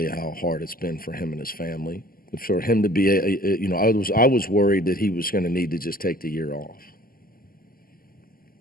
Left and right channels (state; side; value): late; right; 0.42 ms